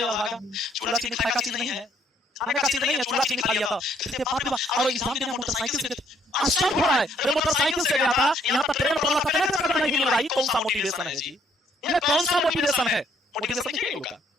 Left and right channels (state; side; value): normal; both; correlation 0.66